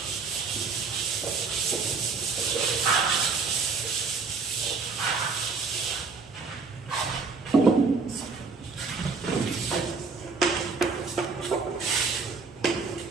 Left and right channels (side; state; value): left; quieter; 4.6 dB